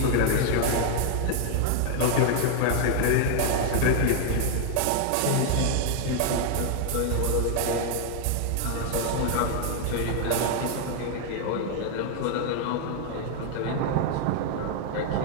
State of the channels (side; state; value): both; different; correlation 0.00